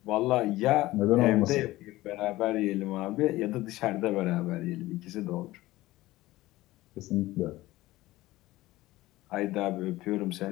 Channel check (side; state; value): right; quieter; 17.7 dB